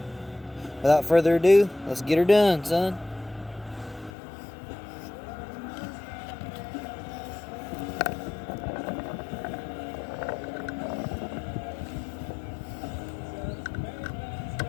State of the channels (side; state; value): right; drops out; at 4.1 s